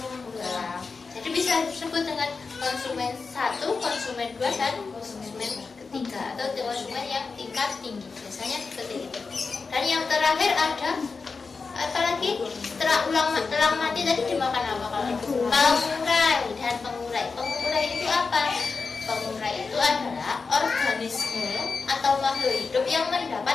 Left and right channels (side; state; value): right; quieter; 4.6 dB